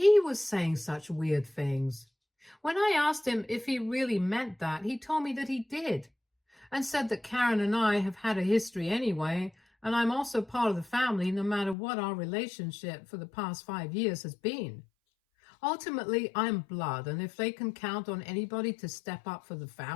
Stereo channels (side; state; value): right; drops out; at 11.8 s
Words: was saying such weird things. When I asked him if he really meant that, he told me that he did, and said that Karen and I have had a history anyway, and I'm also part of the family no matter what our relationship for the past 5 years has been. Ultimately, I'm blood, and if they can count on anybody to step up for the